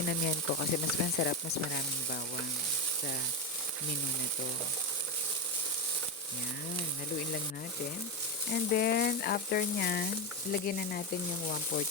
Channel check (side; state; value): both; normal; correlation 0.12